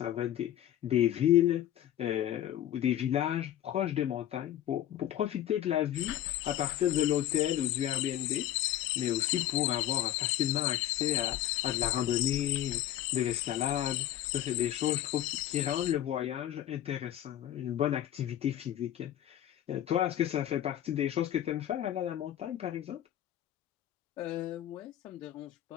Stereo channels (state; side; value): quieter; right; 12.1 dB